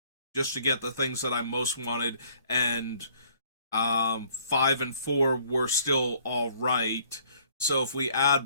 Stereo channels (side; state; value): both; inverted; correlation -0.60